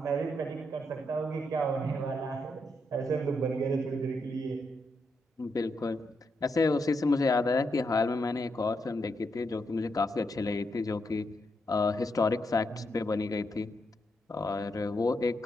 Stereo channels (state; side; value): normal; both; correlation 0.81